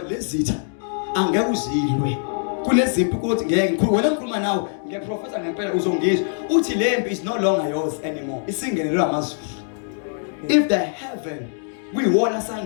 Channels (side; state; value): right; silent; digital silence